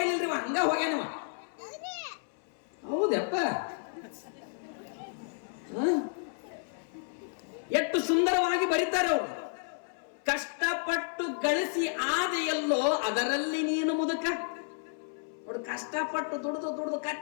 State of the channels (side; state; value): right; silent; 56 dB below the other